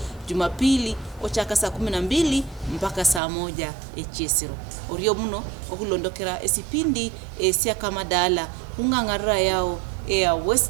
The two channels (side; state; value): left; drops out; at 3.2 s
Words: Jumapili ochaka saa 12 mpaka saa 1 echesiro oriyo muno okulondokera esipindi esya kamadala ungangara yao ya